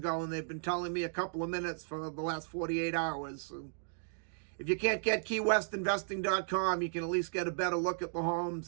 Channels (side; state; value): left; silent; digital silence